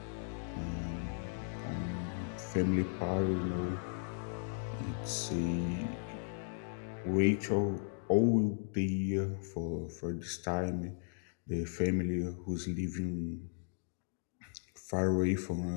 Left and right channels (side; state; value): right; silent; digital silence